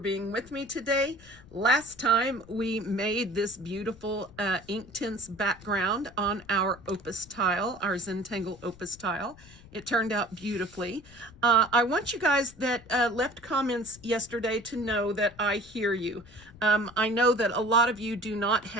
with me today. Last time we made this beautiful Inktense background on our opus tile, our Zentangle opus tile. It turned out beautifully. I want you guys that left comments yesterday to know that I hear you. I know that a lot of you do not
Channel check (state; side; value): noise; left; rumble, 22 dB below the sound